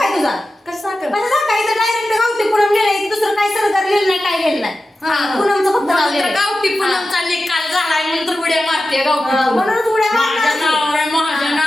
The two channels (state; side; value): normal; both; correlation 0.93